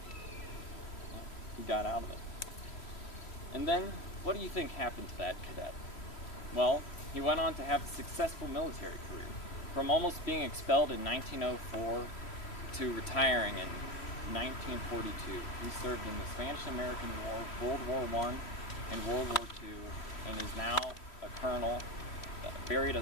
he got out of it. And then, what do you think happened to that cadet? Well, he went on to have a successful military career. From almost being expelled in 1904 to retiring in 1942, he served in the Spanish-American War, World War I, and World War II, and is now a colonel, buried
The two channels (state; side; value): late; right; 3.1 ms